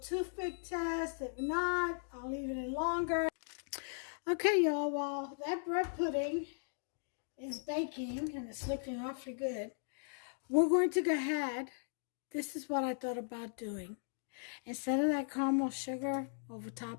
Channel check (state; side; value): silent; right; digital silence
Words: toothpick test. If not, I'll leave it in longer. Okay, y'all, while that bread pudding is baking, and it's looking awfully good, we're going to go ahead. This is what I thought about doing. Instead of that caramel sugar over